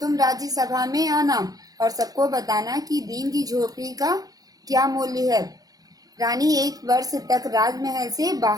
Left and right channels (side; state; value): left; late; 0.18 ms